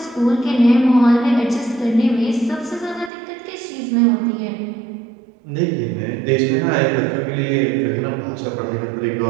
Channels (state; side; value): drops out; left; at 3.1 s